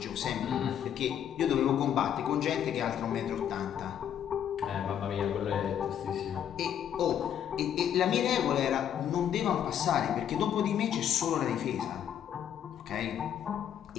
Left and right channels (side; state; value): right; quieter; 9.5 dB